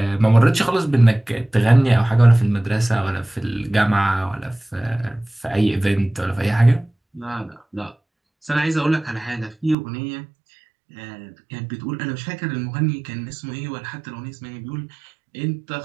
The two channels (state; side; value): drops out; left; at 9.8 s